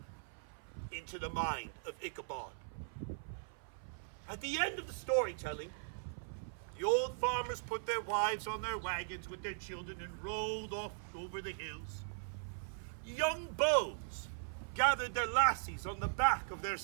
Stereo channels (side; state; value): left; silent; 51 dB below the other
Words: into the mind of Ichabod. At the end of the storytelling, the old farmers put their wives on their wagons with their children and rode off over the hills. Young beaux gathered their lassies on the back of their